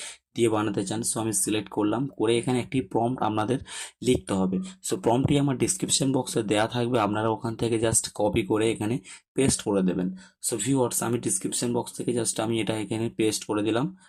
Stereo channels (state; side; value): identical; both; correlation 1.00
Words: দিয়ে বানাতে চান। সো আমি সিলেক্ট করলাম, করে এখানে একটি প্রম্পট আপনাদের লিখতে হবে। সো প্রম্পটটি আমার ডিসক্রিপশন বক্সে দেওয়া থাকবে, আপনারা ওখান থেকে জাস্ট কপি করে এখানে পেস্ট করে দেবেন। সো ভিউয়ার্স, আমি ডিসক্রিপশন বক্স থেকে জাস্ট আমি এটা এখানে পেস্ট করে দিলাম,